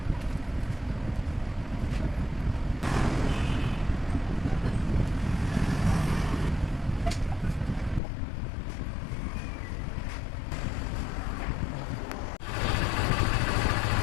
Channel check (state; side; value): drops out; right; at 8.0 s